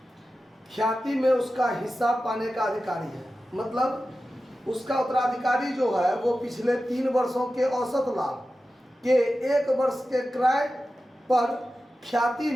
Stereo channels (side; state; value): both; normal; correlation 0.94